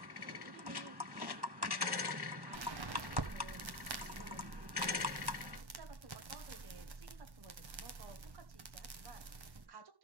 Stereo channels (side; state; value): left; late; 1.1 ms